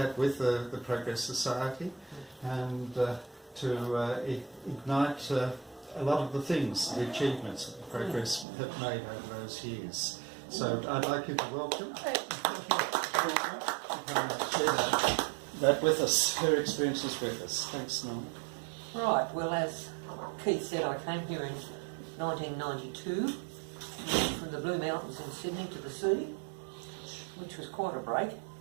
with the Progress Society, and to ignite a lot of the things, the achievements that the Progress have made over those years. So I'd like you to welcome share that with us, her experiences with us. Thanks, Norma. Right, well, as Keith said, I came here in 1992 from the Blue Mountains in Sydney to the sea, which was quite a break,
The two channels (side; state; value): left; drops out; at 8.5 s